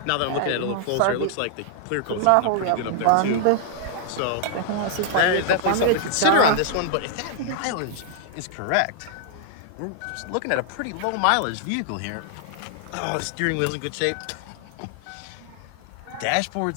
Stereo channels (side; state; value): both; different; correlation 0.00